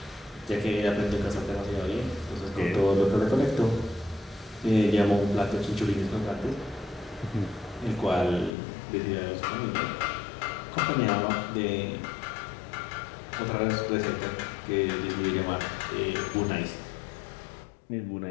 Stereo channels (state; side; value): drops out; right; at 8.5 s